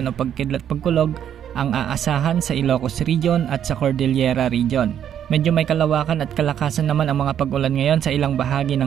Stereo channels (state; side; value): quieter; left; 9.6 dB